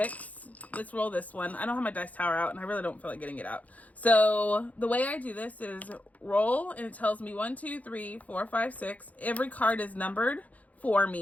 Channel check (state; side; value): late; right; 0.073 ms